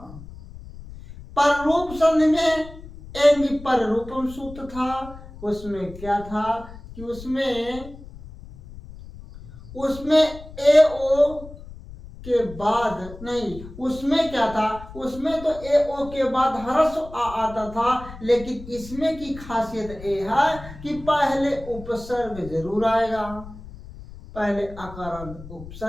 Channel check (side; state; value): left; noise; rumble, 16 dB below the sound